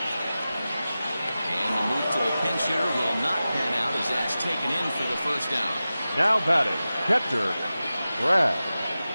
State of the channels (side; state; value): both; inverted; correlation -0.95